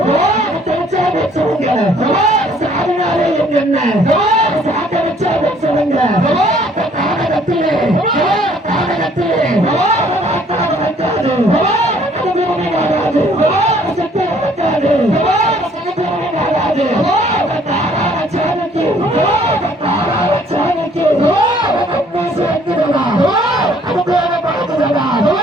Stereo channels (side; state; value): both; normal; correlation 0.60